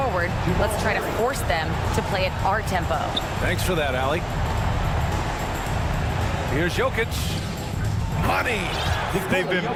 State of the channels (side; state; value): both; identical; correlation 1.00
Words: let's try to force them to play at our tempo. Thanks for that, Allie. Here's Jokic. Money. They've been